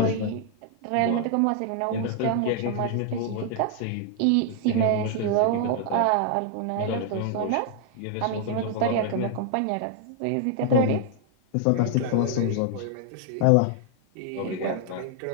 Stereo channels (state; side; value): different; both; correlation 0.00